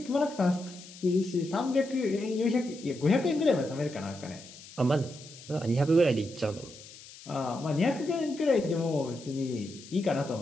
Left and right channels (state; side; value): noise; left; hiss, 18 dB below the sound